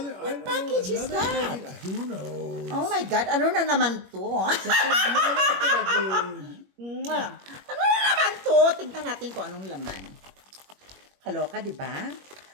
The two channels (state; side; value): late; left; 21 ms